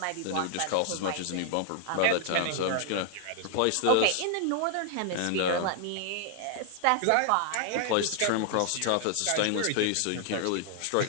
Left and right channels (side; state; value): both; different; correlation 0.00